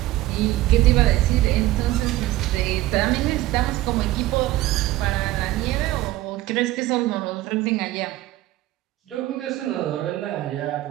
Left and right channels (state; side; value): quieter; left; 16.1 dB